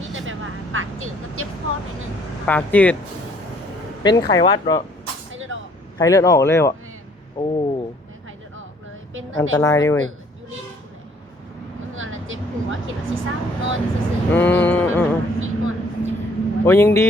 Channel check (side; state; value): both; normal; correlation 0.61